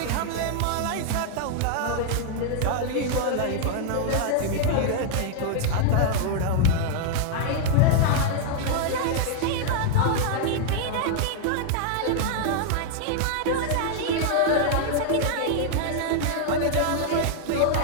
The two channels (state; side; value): different; both; correlation -0.01